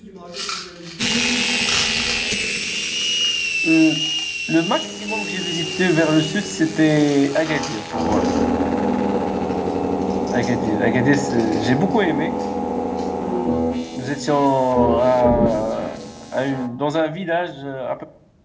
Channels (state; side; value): identical; both; correlation 1.00